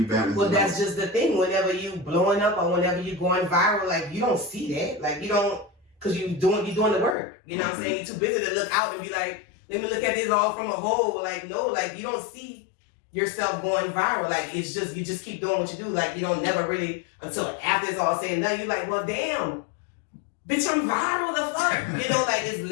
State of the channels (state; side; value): drops out; right; at 7.2 s